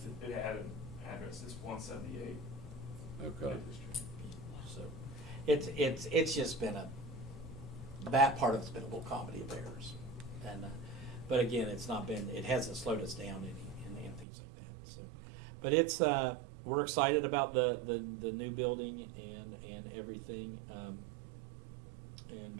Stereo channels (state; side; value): drops out; left; at 14.2 s